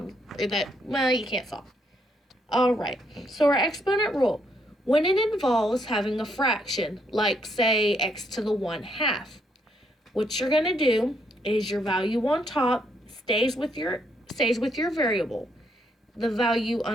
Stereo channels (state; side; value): normal; both; correlation 0.74